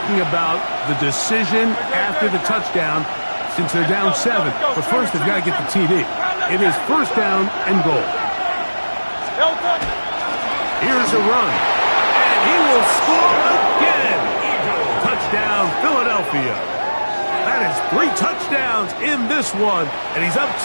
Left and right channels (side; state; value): both; inverted; correlation -1.00